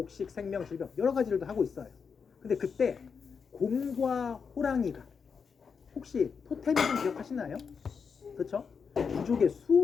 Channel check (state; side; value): quieter; right; 5.9 dB